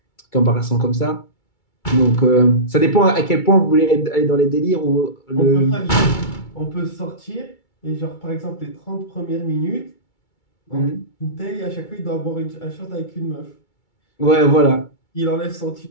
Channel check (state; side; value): late; right; 2.3 ms